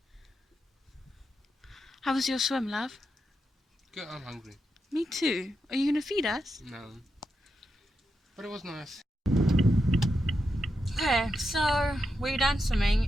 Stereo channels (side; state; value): both; normal; correlation 0.86